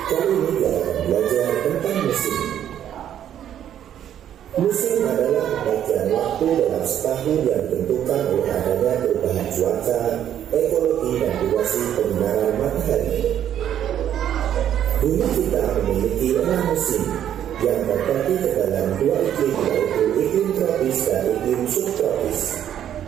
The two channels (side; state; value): left; quieter; 10.4 dB